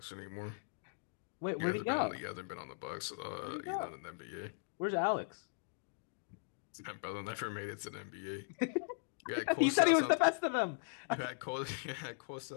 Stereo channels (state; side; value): silent; right; digital silence